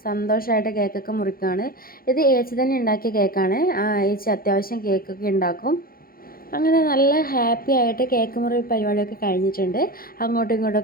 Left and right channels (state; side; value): late; right; 0.42 ms